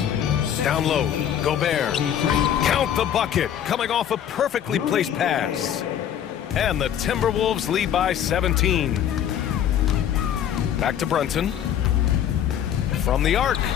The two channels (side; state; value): right; quieter; 9.8 dB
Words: Down low, Gobert. Count the bucket, coming off a perfectly placed pass. And the Timberwolves lead by 17. Back to Brunson. From the arc.